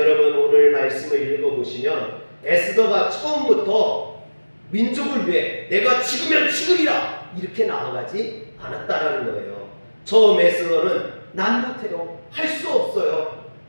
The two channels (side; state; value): both; inverted; correlation -1.00